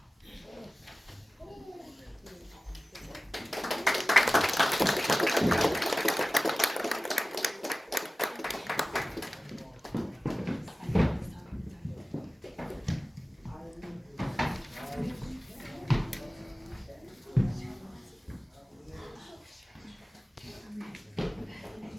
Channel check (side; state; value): both; normal; correlation 0.96